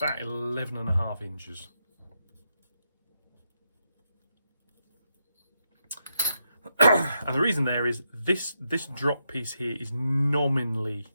11.5 inches. And the reason there is this drop piece here is nominally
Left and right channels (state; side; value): inverted; both; correlation -0.82